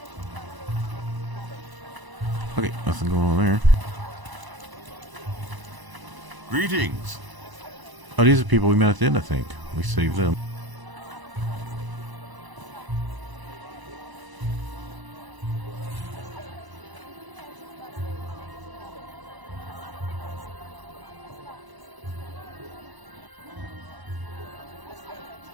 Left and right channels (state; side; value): late; left; 1.0 ms